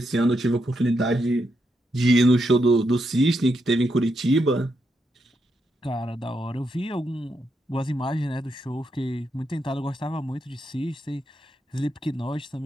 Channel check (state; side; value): normal; both; correlation 0.82